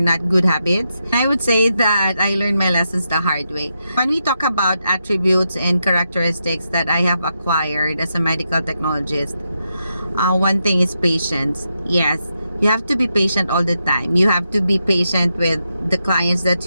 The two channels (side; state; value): both; inverted; correlation -0.84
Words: good habits. I would say that I learned my lessons the hard way. When we talk about attributes and characteristics that I have acquired as a medical technologist, one thing is patience. Yes, you have to be patient all the time. You have to be patient with the clients